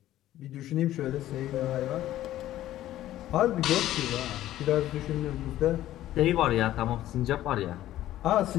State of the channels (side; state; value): right; quieter; 13.7 dB